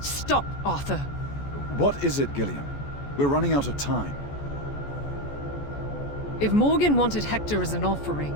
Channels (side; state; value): right; late; 14 ms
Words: Arthur. What is it, Gillian? We're running out of time. If Morgan wanted Hector as an offering,